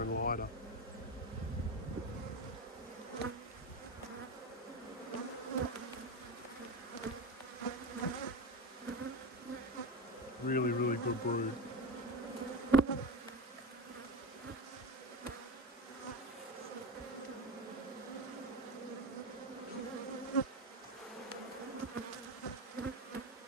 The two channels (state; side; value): normal; both; correlation 0.20